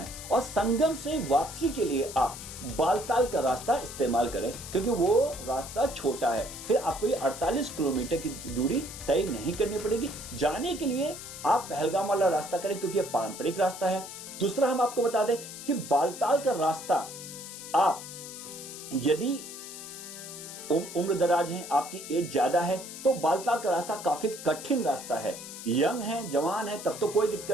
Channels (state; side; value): noise; left; hiss, 11 dB below the sound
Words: और संगम से वापसी के लिए आप बालताल का रास्ता इस्तेमाल करें, क्योंकि वो रास्ता छोटा है। फिर आपको ये 48 किलोमीटर की दूरी तय नहीं करनी पड़ेगी। जाने के लिए आप पहलगाम वाला रास्ता करें, क्योंकि ये पारंपरिक रास्ता है। दूसरा हम आपको बता दें कि बालताल का रास्ता आप यदि उम्र दराज हैं, आपकी एज ज्यादा है, तो बालताल का रास्ता काफी कठिन रास्ता है। यंग है, जवान है, तब तो कोई